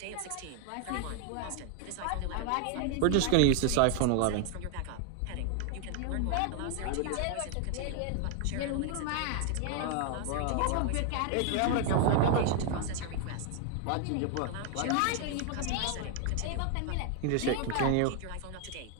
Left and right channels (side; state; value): both; different; correlation 0.00